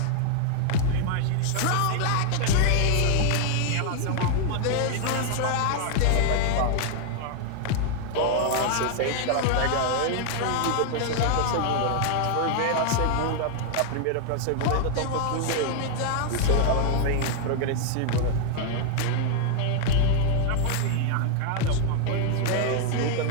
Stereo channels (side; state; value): both; different; correlation 0.00